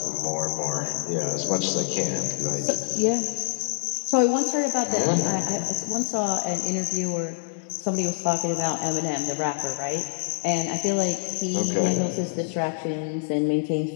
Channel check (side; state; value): right; silent; digital silence